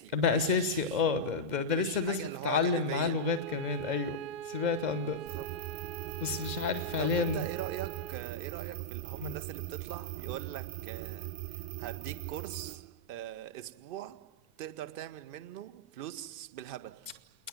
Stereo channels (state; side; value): late; left; 2.0 ms